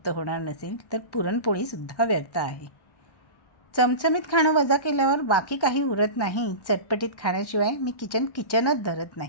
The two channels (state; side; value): late; right; 1.1 ms